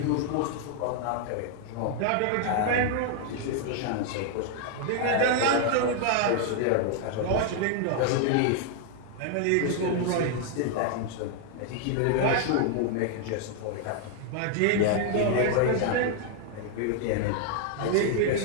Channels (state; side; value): different; both; correlation 0.00